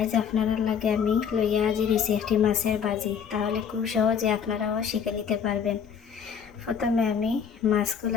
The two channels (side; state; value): right; quieter; 7.3 dB